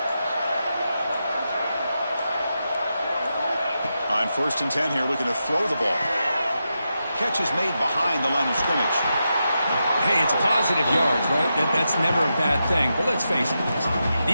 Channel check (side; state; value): both; inverted; correlation -0.87